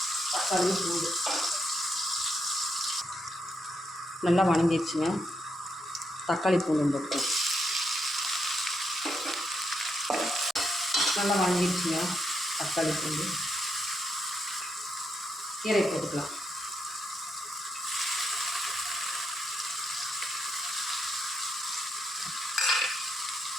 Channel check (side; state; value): both; normal; correlation 0.81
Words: தக்காளி பூண்டு நல்லா வணங்கிடுச்சுங்க. தக்காளி பூண்டு போட்டுக்கலாம். நல்லா வணங்கிடுச்சுங்க தக்காளி பூண்டு. கீரை போட்டுக்கலாம்.